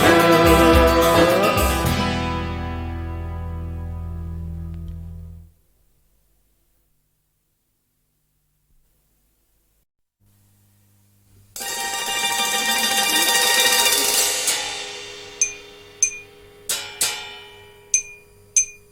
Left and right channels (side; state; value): both; identical; correlation 1.00